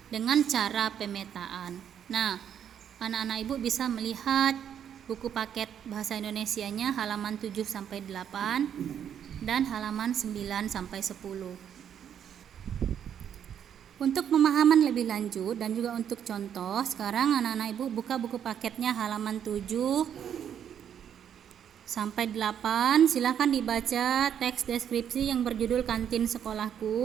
dengan cara pemetaan. Nah, anak-anak Ibu bisa melihat buku paket bahasa Indonesianya halaman 7 sampai 8 dan halaman 9 sampai 10. Untuk pemahaman lebih lanjut dan juga untuk contoh, sekarang anak-anak Ibu buka buku paketnya halaman 7 sampai 8. Silakan dibaca teks deskripsi yang berjudul Kantin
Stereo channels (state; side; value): quieter; left; 9.0 dB